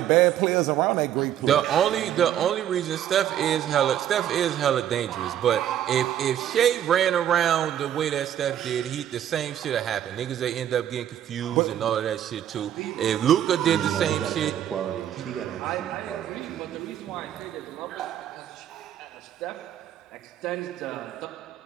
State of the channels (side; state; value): left; quieter; 10.7 dB